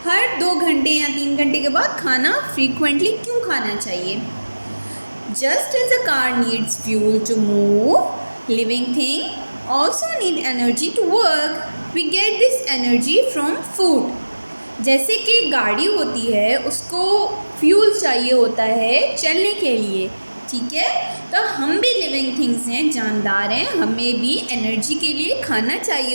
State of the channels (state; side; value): inverted; both; correlation -1.00